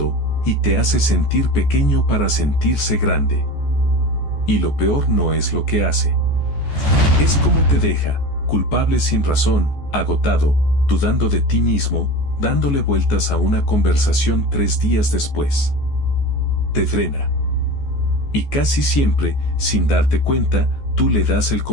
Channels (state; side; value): late; right; 14 ms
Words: y te hace sentir pequeño para sentirse grande. Y lo peor no es lo que hace. Es cómo te deja, culpable sin razón, agotado, dudando de ti mismo, dándole vueltas a una conversación 3 días después. Te drena. Y casi siempre, sin darte cuenta, tú le das el